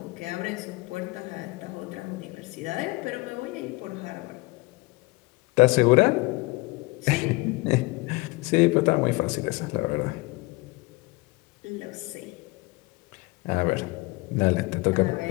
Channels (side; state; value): right; quieter; 23.8 dB